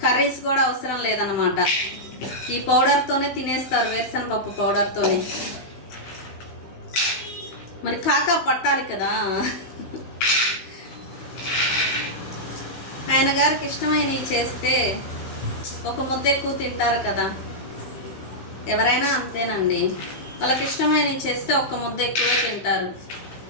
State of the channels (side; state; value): right; late; 16 ms